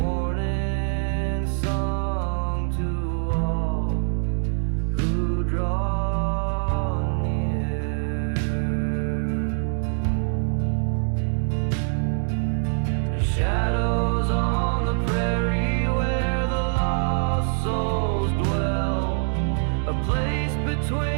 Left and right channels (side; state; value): left; silent; 60 dB below the other